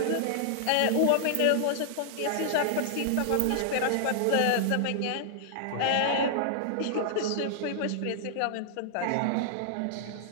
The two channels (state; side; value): different; both; correlation -0.01